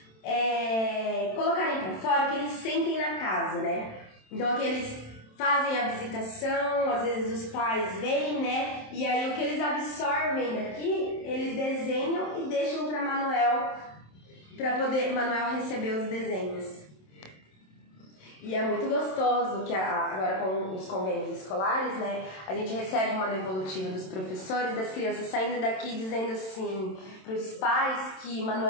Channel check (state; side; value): late; right; 27 ms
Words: colocarem pra fora, que eles sentem na casa, né? Então aqui eles fazem a visitação, às vezes os pais vêm, né? E aí o que eles absorvem daqui, eles desenham e deixam para Manuel poder Manuel receber os desenhos. E é muito gostoso que agora com os convênios escolares, né? A gente recebe uma devolutiva dos professores, das crianças saindo daqui dizendo assim para os pais que